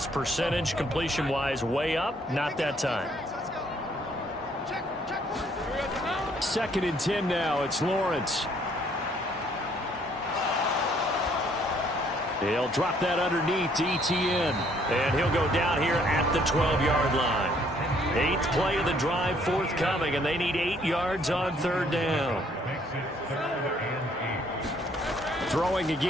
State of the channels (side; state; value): both; normal; correlation 0.64